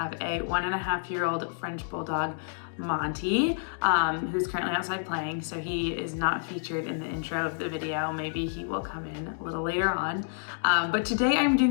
a 1.5-year-old French Bulldog, Monte, who's currently outside playing, so he is not featured in the intro of the video. Maybe he will come in a little later on. But today I'm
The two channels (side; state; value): right; silent; digital silence